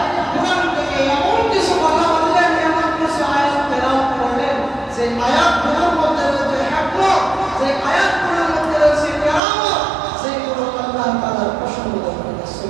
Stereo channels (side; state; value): left; drops out; at 9.4 s